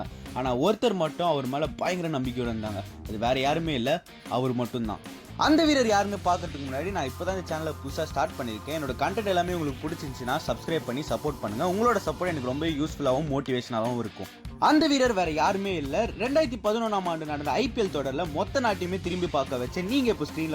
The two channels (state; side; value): identical; both; correlation 1.00